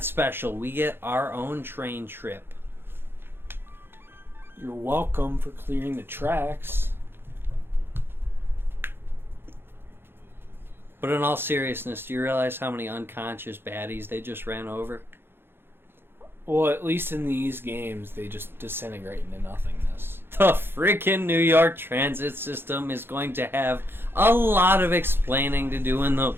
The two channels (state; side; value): late; left; 0.11 ms